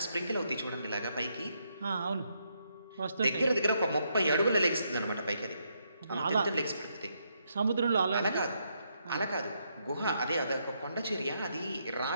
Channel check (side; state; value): both; inverted; correlation -0.77